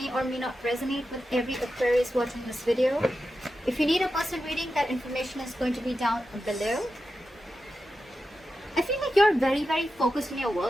or may not resonate with every Aquarius watching this video. If you need a personal reading, that information is going to be down below. I feel like you're very, very focused on your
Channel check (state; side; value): normal; both; correlation 0.91